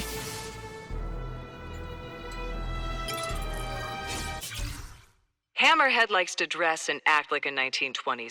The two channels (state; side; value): identical; both; correlation 1.00